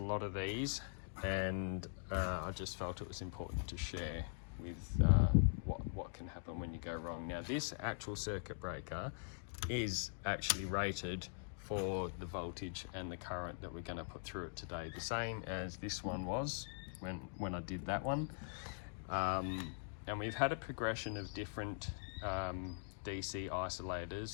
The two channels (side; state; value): right; silent; digital silence